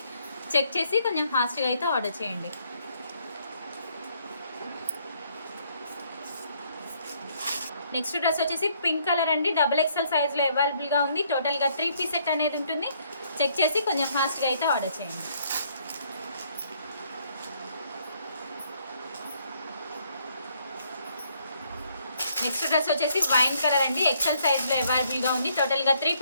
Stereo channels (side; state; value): both; inverted; correlation -0.68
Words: చెక్ చేసి కొంచెం ఫాస్ట్గా అయితే ఆర్డర్ చేయండి. నెక్స్ట్ డ్రెస్ వచ్చేసి పింక్ కలర్ అండి. XXL సైజ్లో అవైలబుల్గా ఉంది. టోటల్గా 3 పీస్ సెట్ అనేది ఉంటుంది. చెక్ చేసి కొంచెం ఫాస్ట్గా అయితే ఆర్డర్ చేయండి. నెక్స్ట్ డ్రెస్ వచ్చేసి వైన్ కలర్ అండి. XL సైజ్లో అవైలబుల్గా ఉంది. టోటల్గా 3